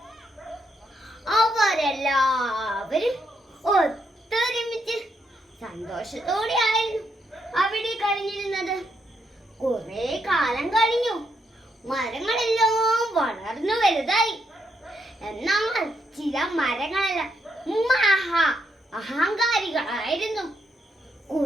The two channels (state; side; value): normal; both; correlation 0.78